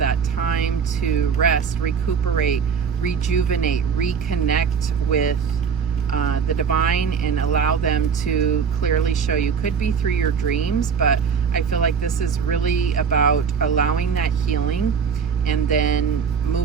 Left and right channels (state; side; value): quieter; left; 6.4 dB